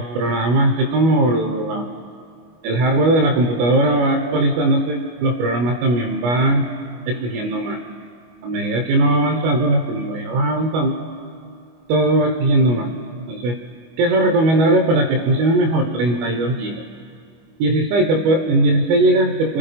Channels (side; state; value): left; late; 25 ms